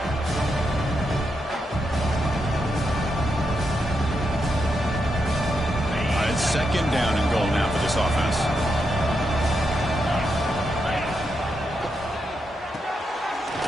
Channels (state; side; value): normal; both; correlation 0.83